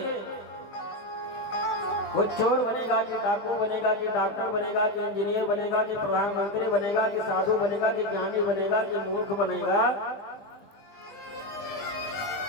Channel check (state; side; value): late; right; 20 ms